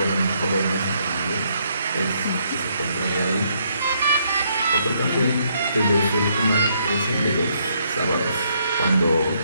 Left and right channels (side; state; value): both; inverted; correlation -0.72